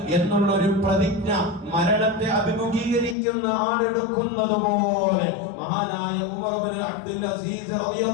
എന്നുള്ളൊരു പ്രതിജ്ഞ മരണത്തെ അഭിമുഖീകരിക്കുന്ന ആളെടുക്കുന്നത് പോലെ മഹാനായ ഉമർ ബിൻ അബ്ദുൽ അസീസ്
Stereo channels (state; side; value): drops out; right; at 3.2 s